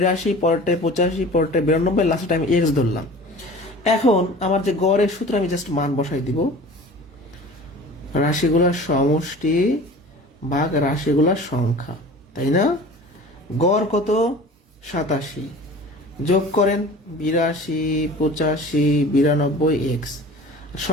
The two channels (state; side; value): normal; both; correlation 0.41